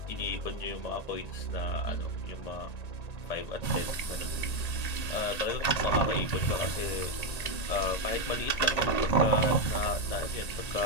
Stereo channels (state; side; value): late; right; 1.9 ms